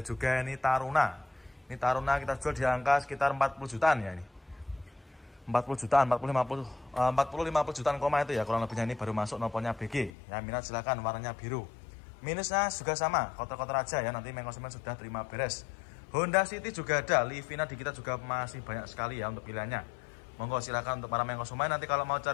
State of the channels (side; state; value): right; drops out; at 10.1 s